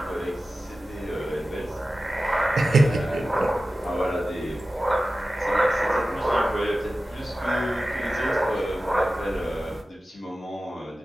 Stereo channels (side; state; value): both; normal; correlation 0.95